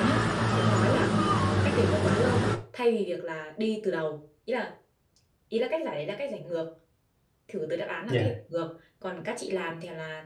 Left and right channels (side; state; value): both; identical; correlation 1.00